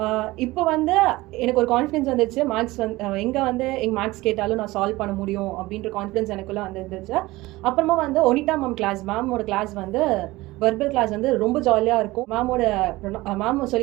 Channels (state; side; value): quieter; left; 19.6 dB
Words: இப்போ வந்து எனக்கு ஒரு கான்ஃபிடன்ஸ் வந்துச்சு, மேக்ஸ் எங்கே எங்கள் மேக்ஸ் கேட்டாலும் நான் சால்வ் பண்ண முடியும் அப்படின்ற கான்ஃபிடன்ஸ் எனக்குள்ளே வந்துருந்துச்சு. அப்புறமா ஒனிட்டா மேம் மேமோட கிளாஸ் வெர்பல் கிளாஸ் ரொம்ப ஜாலியாக இருக்கும். மேம்